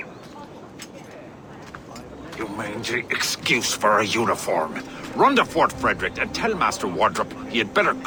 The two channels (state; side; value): identical; both; correlation 1.00